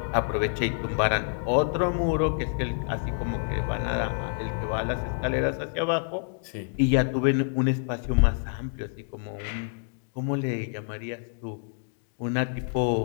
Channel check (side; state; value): right; silent; digital silence